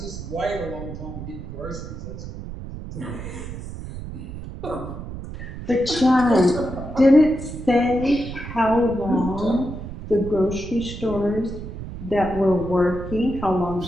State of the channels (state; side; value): noise; right; rumble, 10 dB below the sound